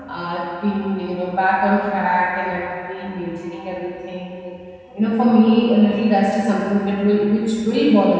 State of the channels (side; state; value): both; identical; correlation 1.00